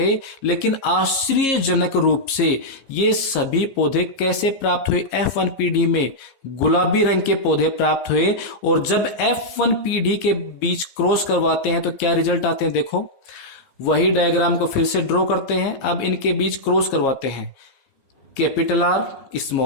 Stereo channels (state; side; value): late; right; 15 ms